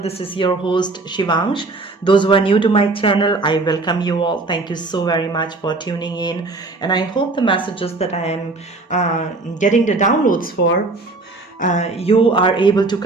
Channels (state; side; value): quieter; left; 3.4 dB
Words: This is your host, Shivangsh. Those who are new to my channel, I welcome you all. Thank you so very much for tuning in. And I hope the messages that I am getting the downloads for, you are able to